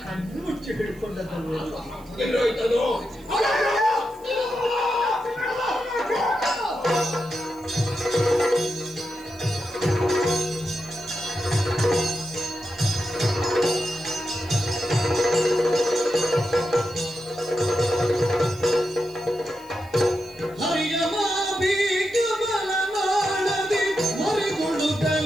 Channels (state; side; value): noise; right; hiss, 26 dB below the sound